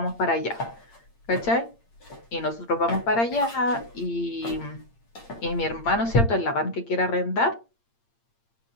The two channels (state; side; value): late; right; 8.7 ms